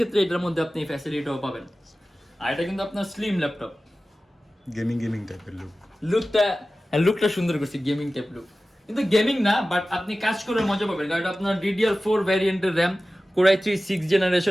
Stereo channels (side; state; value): both; normal; correlation 0.96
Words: এটার মধ্যে আপনি এই ফ্যাসিলিটিটাও পাবেন। আর এটা কিন্তু আপনার স্লিম ল্যাপটপ, গেমিং টাইপের লুকটা সুন্দর করছে, গেমিং টাইপ লুক, কিন্তু গেমিং না, বাট আপনি কাজ করে মজা পাবেন। কারণ এটা আপনার DDR4 ভ্যারিয়েন্টের RAM, core i3 6